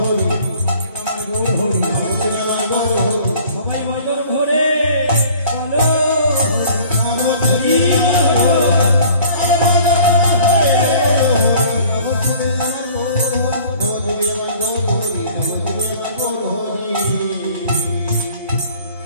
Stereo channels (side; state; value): both; inverted; correlation -0.51